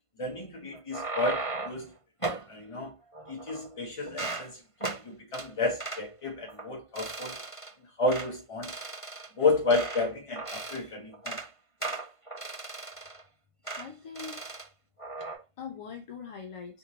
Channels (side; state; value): right; late; 1.5 ms